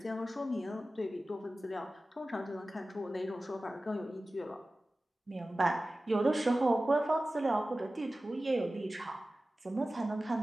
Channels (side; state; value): both; normal; correlation 0.96